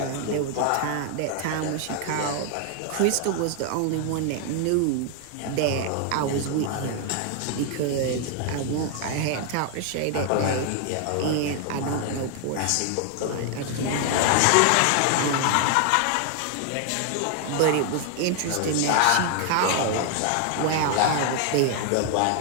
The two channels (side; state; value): both; different; correlation 0.00